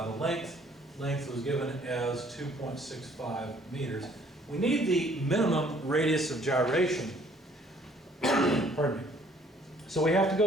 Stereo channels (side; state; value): both; normal; correlation 0.60